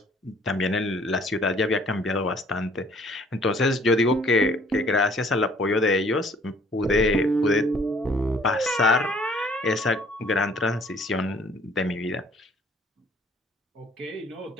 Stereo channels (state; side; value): normal; both; correlation 0.59